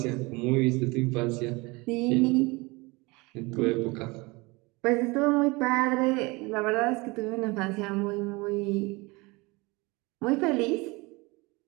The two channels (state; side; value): quieter; left; 25.0 dB